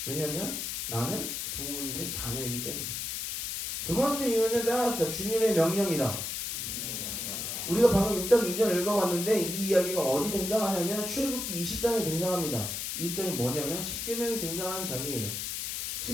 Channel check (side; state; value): left; noise; hiss, 3 dB below the sound